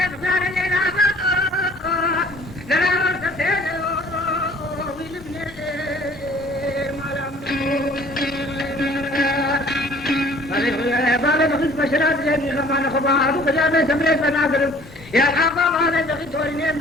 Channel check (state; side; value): normal; both; correlation 0.53